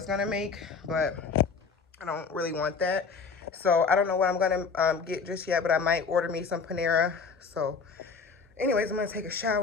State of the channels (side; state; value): right; quieter; 5.2 dB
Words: going to make, but I don't really want that. So I don't know what I'm going to get just yet, but I might order me some Panera. So anyways, I'm going to take a